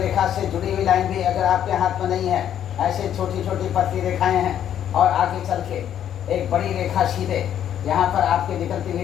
से जुड़ी हुई लाइन भी अगर आपके हाथ में नहीं है, ऐसे छोटी छोटी पतली रेखाएं हैं और आगे चल के एक बड़ी रेखा सीधे यहाँ पर आपके निकलती हुई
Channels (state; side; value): quieter; right; 10.1 dB